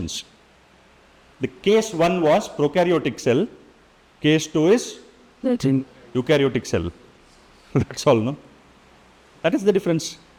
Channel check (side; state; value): both; identical; correlation 1.00